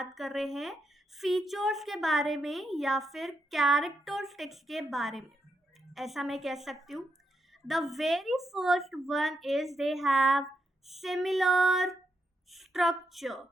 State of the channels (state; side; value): normal; both; correlation 0.82